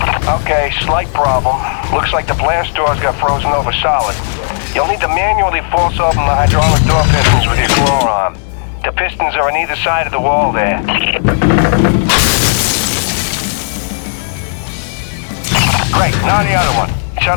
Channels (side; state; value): right; silent; digital silence